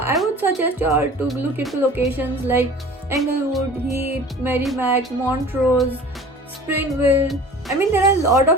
would suggest you all to look into locations like Englewood, Heath, Merrimack, Montrose, Springville. I mean, there are a lot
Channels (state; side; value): normal; both; correlation 0.43